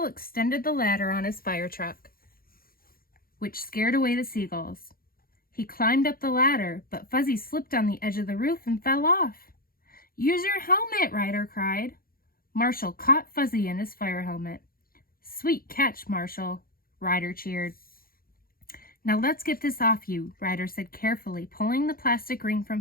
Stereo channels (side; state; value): right; late; 0.42 ms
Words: extended the ladder on his fire truck, which scared away the seagulls. He climbed up the ladder, but Fuzzy slipped on the edge of the roof and fell off. "Use your helmet," Ryder cried. Marshal caught Fuzzy in his fire helmet. "Sweet catch, Marshal," Ryder cheered. "Now let's get this off you," Ryder said carefully, pulling the plastic ring from